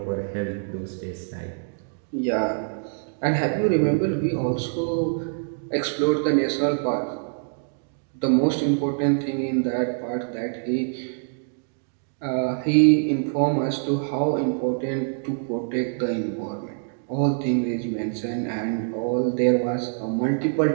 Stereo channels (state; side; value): silent; left; digital silence